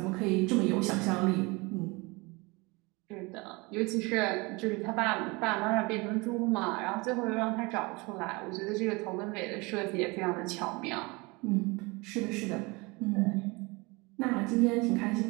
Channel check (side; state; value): left; quieter; 25.8 dB